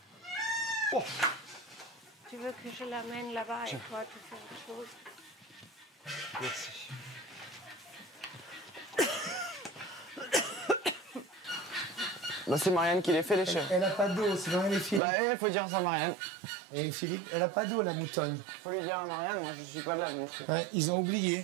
Oh. Tu veux que je l'amène là-bas et toi, tu fais autre chose? Merci. Bah, c'est Marianne qui les fait, les chèvres. Elle a pas d'eau, c'est Marianne et Philippe. Bah, il faut dire ça à Marianne. Et Philippe, elle a pas d'eau, la moutonne. Faut lui dire à Marianne, moi je suis pas là. Donc... Ouais, ils ont oublié.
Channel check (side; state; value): left; drops out; at 15.0 s